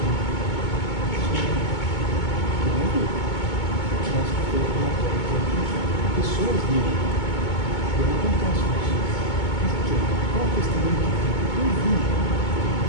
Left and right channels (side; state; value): right; late; 2.2 ms